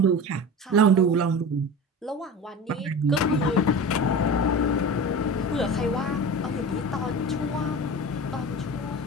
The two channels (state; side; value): normal; both; correlation 0.31